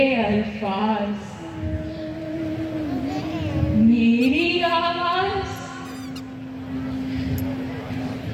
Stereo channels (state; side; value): identical; both; correlation 1.00